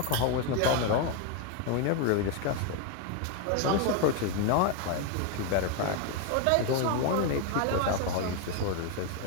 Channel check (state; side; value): different; both; correlation 0.01